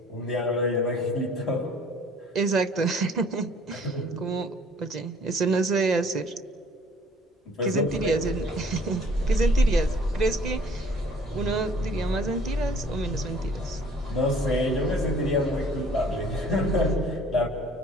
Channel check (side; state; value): both; normal; correlation 0.55